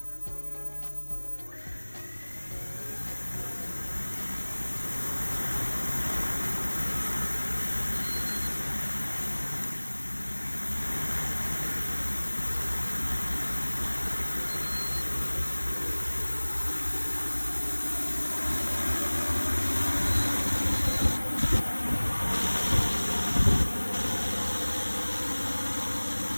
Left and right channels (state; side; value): inverted; both; correlation -1.00